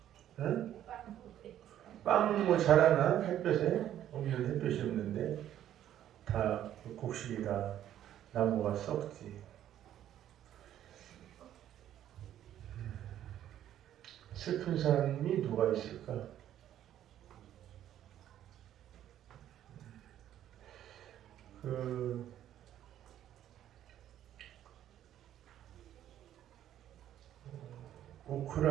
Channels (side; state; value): left; quieter; 11.5 dB